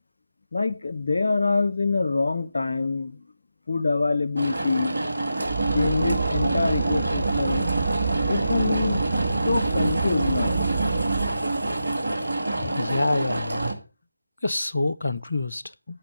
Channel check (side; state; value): both; inverted; correlation -0.88